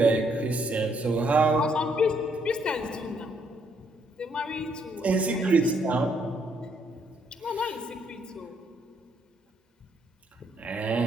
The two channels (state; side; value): normal; both; correlation 0.71